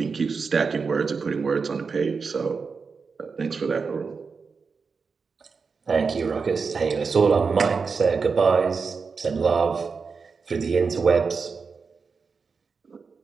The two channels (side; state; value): left; quieter; 5.1 dB